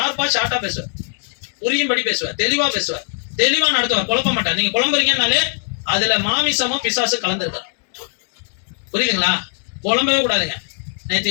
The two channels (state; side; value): silent; right; 66 dB below the other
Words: பேசுவார், புரியும்படி பேசுவார், தெளிவா பேசுவார், தெளிவா நடத்துவார், குழப்ப மாட்டார். நீங்க குழம்புறீங்கன்னாலே அதுல மாமிசமும் பிசாசு கலந்துருக்காரு. புரியுதுங்களா? குழம்பவே கூடாதுங்க.